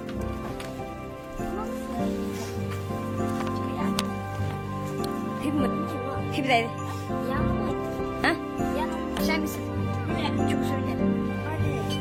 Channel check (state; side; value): identical; both; correlation 1.00